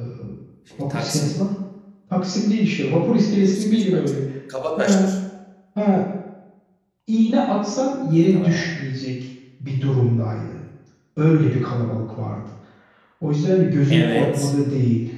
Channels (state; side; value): identical; both; correlation 1.00